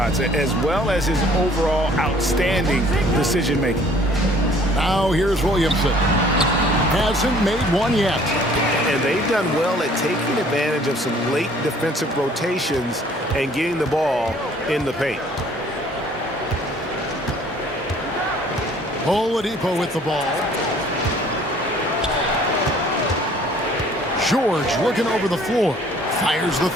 as well as his overall outstanding decision making. Now here's Williamson. Hasn't made one yet. And they've done well at taking advantage of some late defensive rotations and getting the ball in the paint. Oladipo with the ball. George looking over the floor. Fires the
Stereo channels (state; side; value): normal; both; correlation 0.56